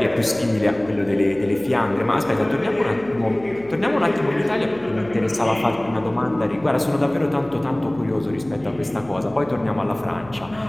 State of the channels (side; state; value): right; noise; hum, 22 dB below the sound